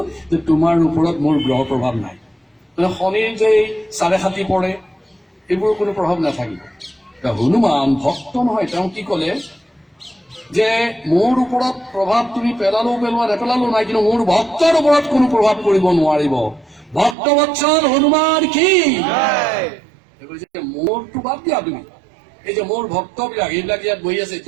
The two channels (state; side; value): drops out; left; at 17.2 s